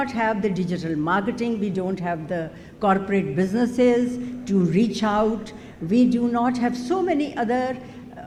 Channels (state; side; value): identical; both; correlation 1.00